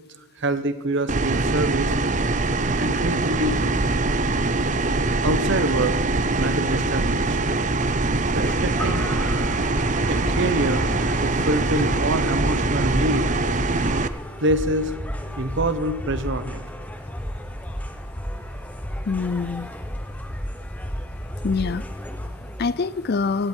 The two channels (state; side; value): normal; both; correlation 0.39